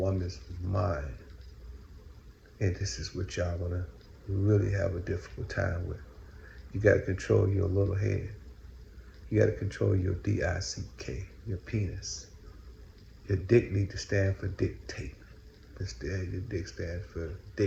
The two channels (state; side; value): identical; both; correlation 1.00